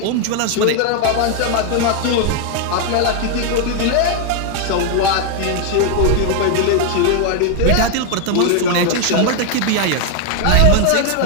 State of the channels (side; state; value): both; different; correlation 0.01